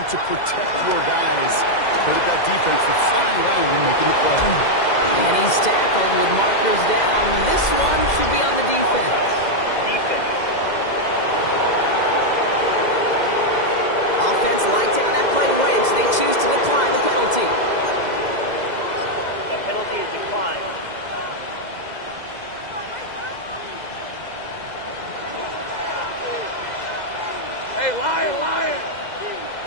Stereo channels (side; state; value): right; late; 2.0 ms